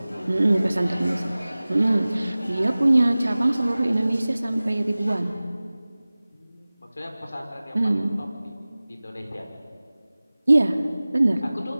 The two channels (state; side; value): inverted; both; correlation -0.99